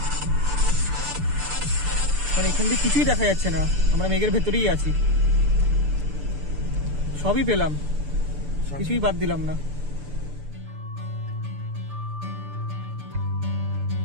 মানে এখান থেকে কিছুই দেখা যাচ্ছে না, আমরা মেঘের ভেতরেই আছি। সবই পেলাম, কিছুই বাদ দিলাম না।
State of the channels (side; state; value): left; late; 6.8 ms